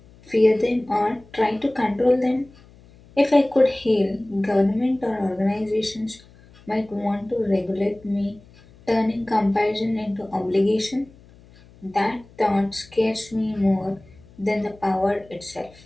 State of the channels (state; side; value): noise; left; hum, 25 dB below the sound